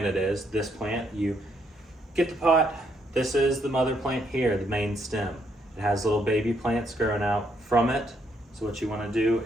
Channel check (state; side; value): normal; both; correlation 0.73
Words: it is. This plant, you get the pot, this is the mother plant here, the main stem. It has little baby plants growing out from it. So what you want to do